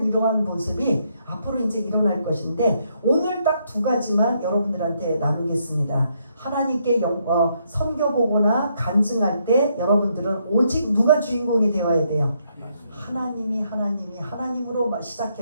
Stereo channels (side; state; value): both; inverted; correlation -0.75